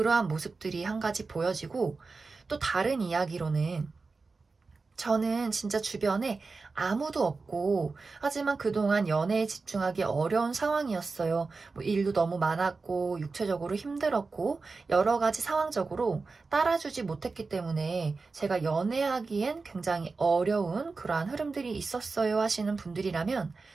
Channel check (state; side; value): quieter; left; 4.2 dB